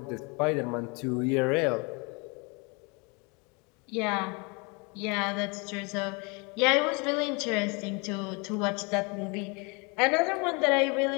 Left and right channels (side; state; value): right; quieter; 30.7 dB